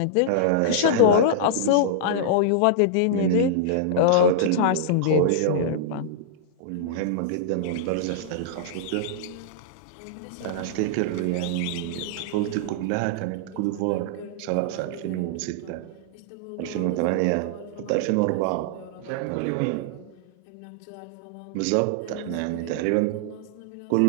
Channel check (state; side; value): different; both; correlation -0.01